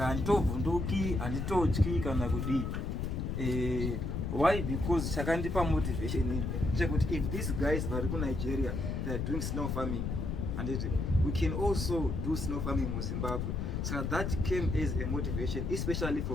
Vunduki and Itochi Kanagudi. Why? Because Sakandipa motivation. If these guys are in Nigeria, they are doing snow farming, and we can also do snow farming in Zimbabwe. So that came as a motivation, especially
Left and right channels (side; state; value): left; noise; rumble, 2 dB below the sound